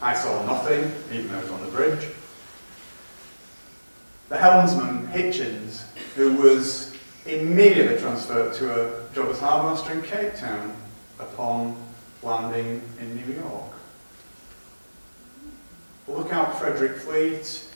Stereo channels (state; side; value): inverted; both; correlation -1.00